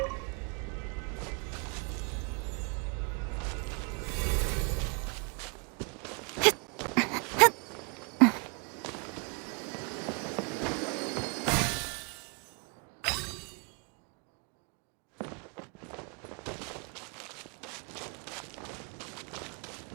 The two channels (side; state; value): left; quieter; 35.8 dB